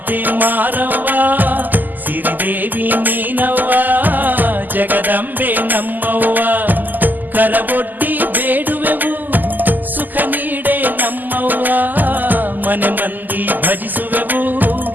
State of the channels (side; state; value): left; late; 0.085 ms